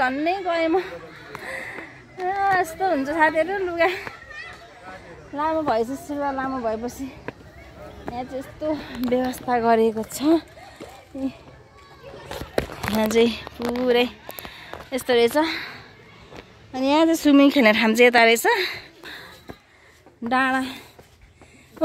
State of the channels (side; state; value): both; identical; correlation 1.00